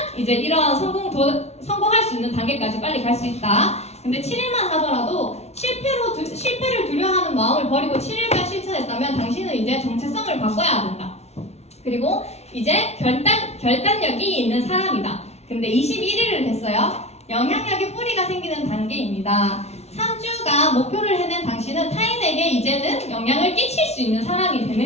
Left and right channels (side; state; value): right; late; 0.31 ms